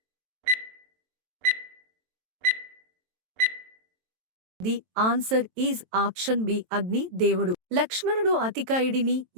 The answer is option B Agni దేవుడు. లక్ష్మణుడు అతికాయుడిని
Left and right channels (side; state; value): left; late; 23 ms